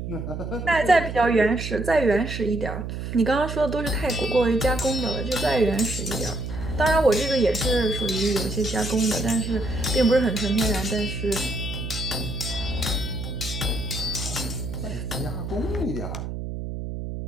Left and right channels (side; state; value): right; noise; hum, 6 dB below the sound